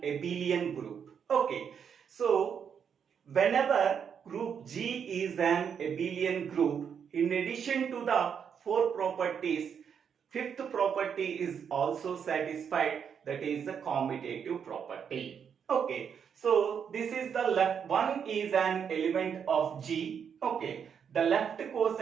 abelian group. Okay, so whenever group G is an abelian group, in addition to the 4 properties, fifth property is also satisfied, that is the commutative property. Okay, so this is the left one is an element of G. Okay, the left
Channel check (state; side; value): quieter; left; 7.4 dB